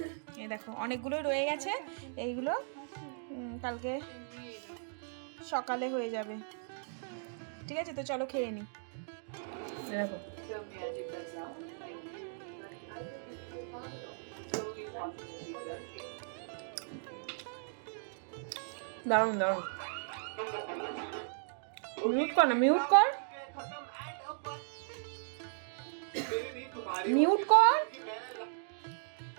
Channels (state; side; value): silent; left; digital silence